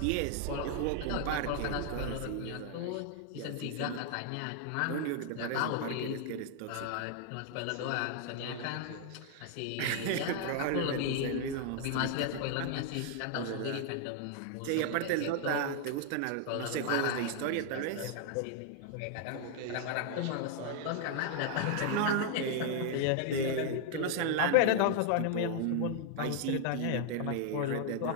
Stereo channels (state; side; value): different; both; correlation 0.00